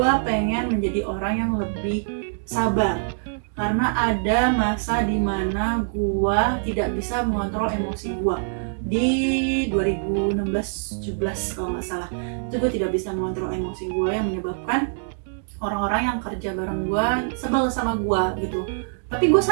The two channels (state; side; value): silent; left; digital silence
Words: pengen menjadi orang yang lebih sabar. Karena ada masa dimana gue tidak bisa mengontrol emosi gue di 2016-17 kalau nggak salah. Itu gue tidak bisa mengontrol emosi gue yang menyebabkan orang-orang yang kerja bareng gue sebel sama gue gitu. Tapi gue